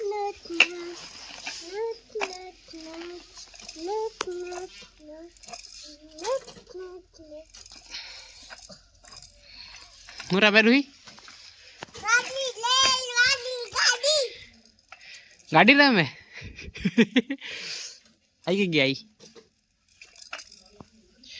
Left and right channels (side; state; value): both; identical; correlation 1.00